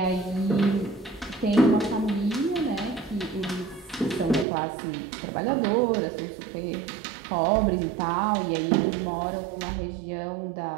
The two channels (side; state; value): left; drops out; at 4.5 s